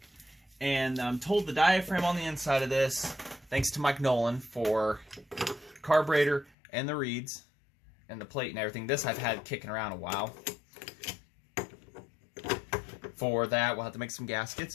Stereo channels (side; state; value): right; drops out; at 6.5 s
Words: And I'm told the diaphragm on the inside of this, thanks to Mike Nolan for carburetor and the reeds and the plate and everything. This I've had kicking around a while. For that, we'll have to make some